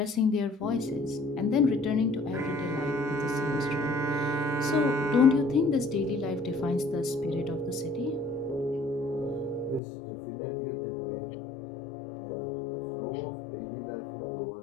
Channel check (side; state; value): right; drops out; at 9.8 s